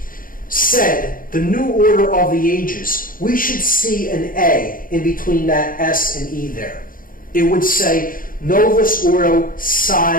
said the new order of the ages, we should see an A in between that S and E there. It would say Novus Ordo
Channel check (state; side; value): late; right; 0.40 ms